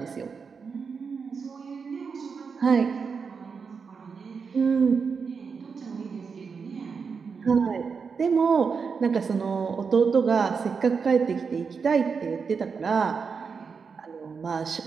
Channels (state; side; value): quieter; left; 5.6 dB